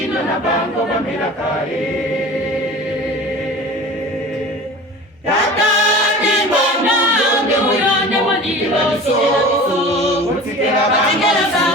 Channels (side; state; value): both; normal; correlation 0.38